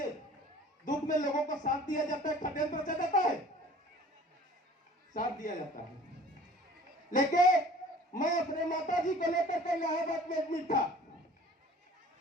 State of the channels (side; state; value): both; normal; correlation 0.47